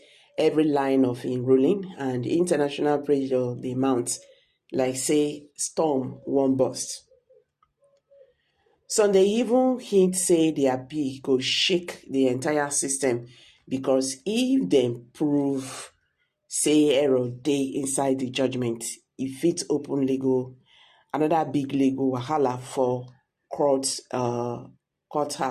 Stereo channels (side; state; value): both; identical; correlation 1.00